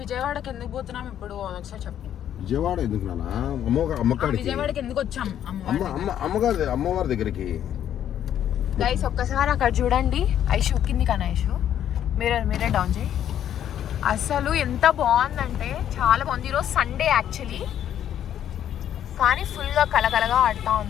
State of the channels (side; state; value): right; quieter; 10.4 dB